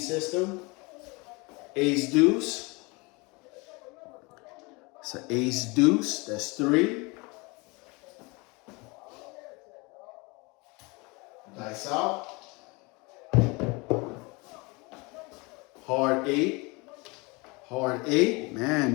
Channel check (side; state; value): right; quieter; 27.0 dB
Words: Ace deuce. It's an ace deuce. That's 3. Dice out. Hard 8. Hard 8. Man,